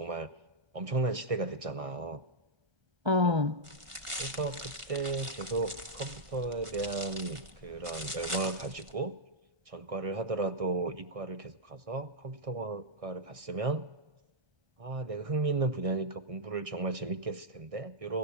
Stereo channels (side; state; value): left; late; 1.4 ms